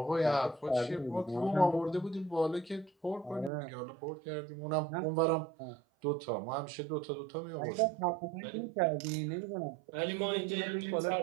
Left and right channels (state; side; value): drops out; left; at 3.5 s